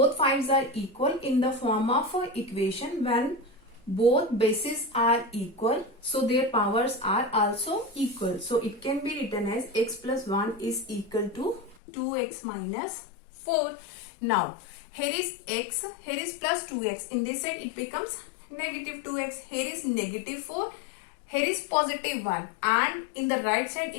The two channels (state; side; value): drops out; right; at 11.8 s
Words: are equal in the form of equation. When both bases are equal, so their powers are also equal. So it can be written as x plus 1 is equal to 2x minus 4. Now here is x, here is plus 2x. In this side it becomes negative 2x. Here is negative 4 here is positive 1 and in the right side